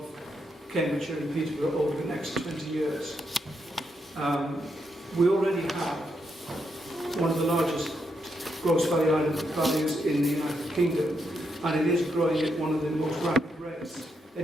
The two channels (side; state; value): both; normal; correlation 0.81